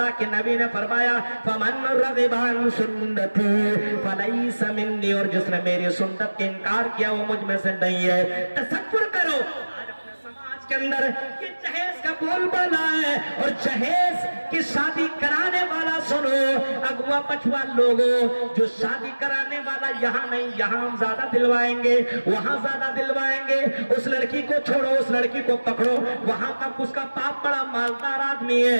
के नबी ने फरमाया फमन रग़िबा अन सुन्नती फलैसा मिन्नी, और जिसने मेरी सुन्नत के इनकार किया वो मुझ में से नहीं है। तसव्वुर करो आज अपने समाज के अंदर ये जहेज का बोलबाला है, और जहेज की शादी कराने वाला सुनो, अगुआ पछुआ लोगों, जो शादी कराने वाला यहाँ नहीं, यहाँ हम ज्यादा दिलवाएंगे, वहां ज्यादा दिलवाएंगे। उस लड़की को छोड़ो, उस लड़की को पकड़ो, वहां का उसका बाप बड़ा मालदार आदमी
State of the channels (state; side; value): inverted; both; correlation -1.00